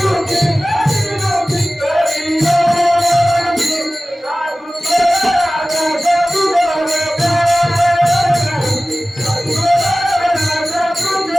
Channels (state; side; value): normal; both; correlation 0.97